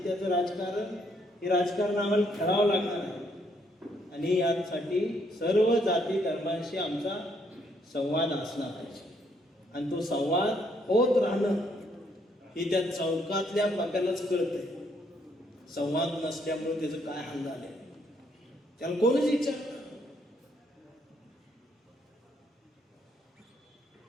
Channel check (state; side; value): normal; both; correlation 0.71